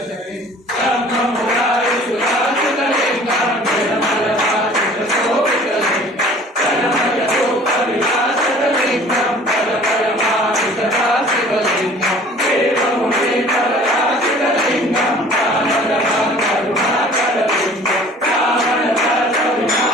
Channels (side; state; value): both; normal; correlation 0.49